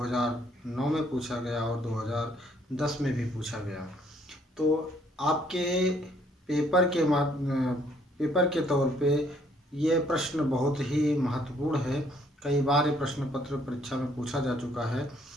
में पूछा गया और 2010 में भी पूछा गया। तो आपके पेपर के तौर पे ये प्रश्न बहुत ही महत्वपूर्ण है। कई बार ये प्रश्न पत्र परीक्षा में पूछा जा चुका है।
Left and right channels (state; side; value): normal; both; correlation 0.66